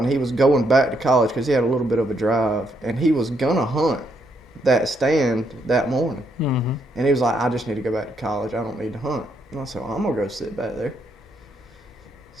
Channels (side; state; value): both; normal; correlation 0.75